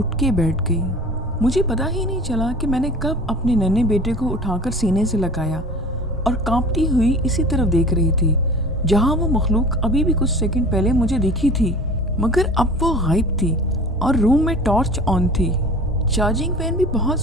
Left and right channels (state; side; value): normal; both; correlation 0.41